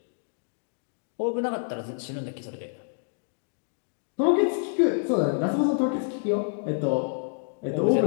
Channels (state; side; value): silent; right; digital silence